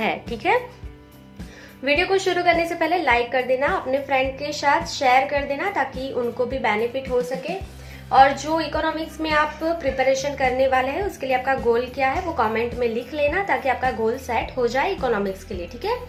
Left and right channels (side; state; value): both; identical; correlation 1.00